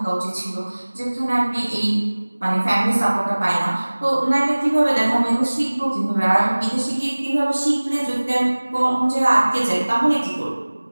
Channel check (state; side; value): inverted; both; correlation -1.00